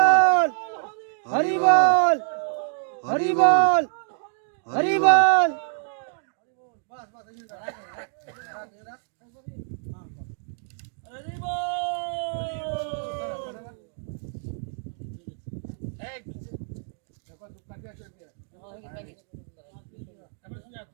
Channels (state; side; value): silent; left; digital silence